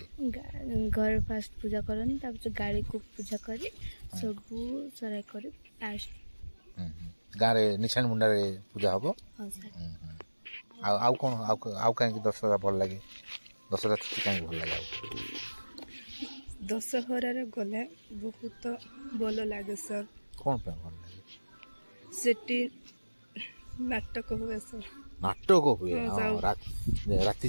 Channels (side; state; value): both; inverted; correlation -1.00